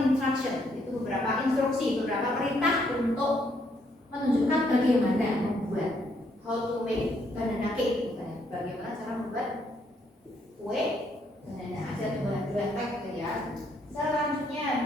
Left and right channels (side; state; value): both; normal; correlation 0.72